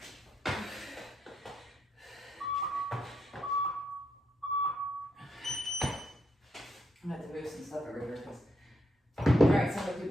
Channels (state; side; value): normal; both; correlation 0.78